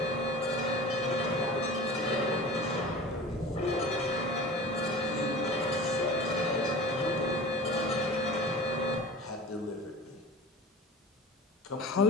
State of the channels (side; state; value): both; normal; correlation 0.37